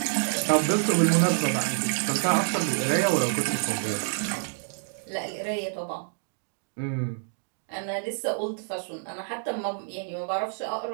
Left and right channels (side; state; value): left; silent; digital silence